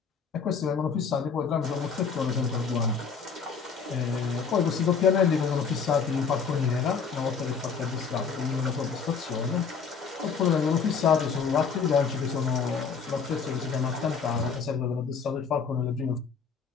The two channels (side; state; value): right; quieter; 5.8 dB